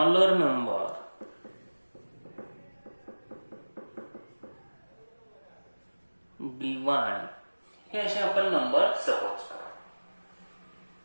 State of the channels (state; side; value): inverted; both; correlation -1.00